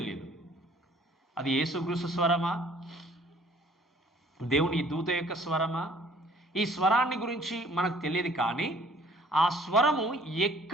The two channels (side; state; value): both; normal; correlation 0.56